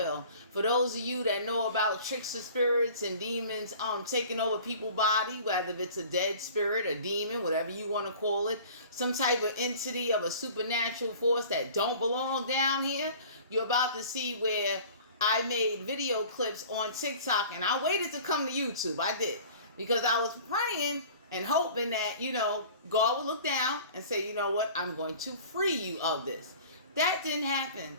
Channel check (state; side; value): inverted; both; correlation -0.45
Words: For those of you that know about trickster spirits and demons taking over people's body, whether it's a dead spirit, a demon, whatever you want to call it, some type of entity of a supernatural force that don't belong down here, you're about to see where I made video clips on TikTok, and I waited to come to YouTube. I did. Because I was praying and hoping that, God would look down and say, you know what, I'm going to free you of this. That didn't happen.